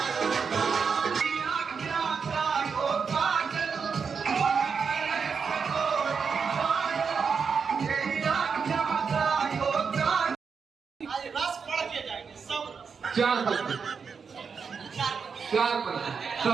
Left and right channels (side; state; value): left; quieter; 5.8 dB